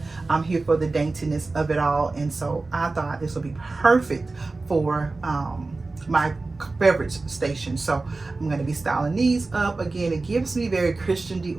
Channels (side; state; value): left; quieter; 3.5 dB